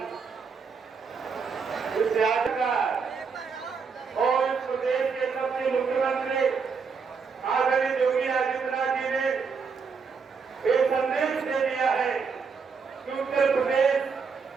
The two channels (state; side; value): quieter; left; 5.4 dB